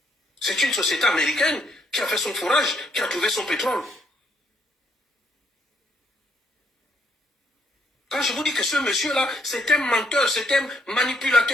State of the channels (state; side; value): normal; both; correlation 0.71